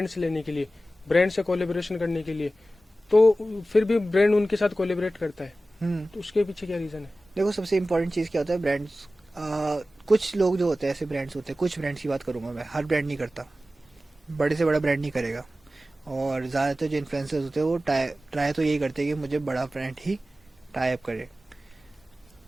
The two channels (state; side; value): normal; both; correlation 0.95